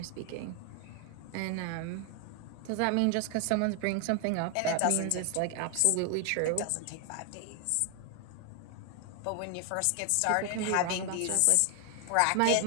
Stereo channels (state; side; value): different; both; correlation 0.00